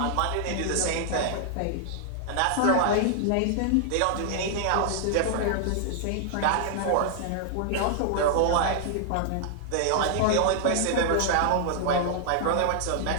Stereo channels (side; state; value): both; different; correlation -0.01